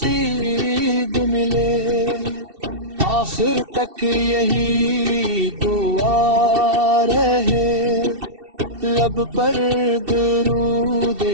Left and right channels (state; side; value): late; left; 2.7 ms